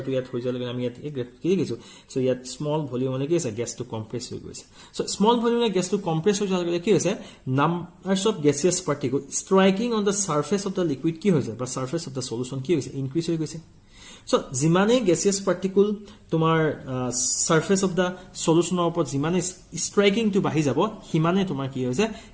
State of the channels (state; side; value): identical; both; correlation 1.00